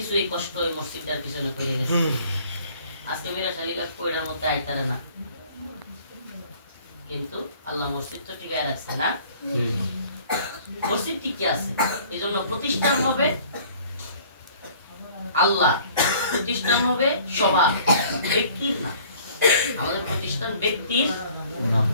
এই কষ্ট এই মসজিদটার পিছনে করে গেছে আজকে মিরাশালী দেখো এটার মধ্যে আইতারে না কিন্তু আল্লাহ মসজিদ তো টিকায় রাখছে না মসজিদ টিকে আছে এই জন্য প্রতিষ্ঠান হবে আল্লাহ প্রতিষ্ঠান হবে সবার ব্যক্তির না আমাদের প্রতিষ্ঠান ব্যক্তির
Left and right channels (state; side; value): inverted; both; correlation -0.53